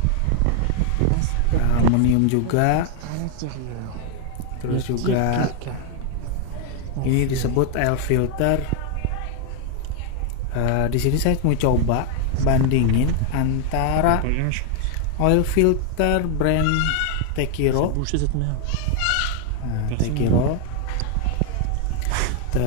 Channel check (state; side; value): different; both; correlation 0.00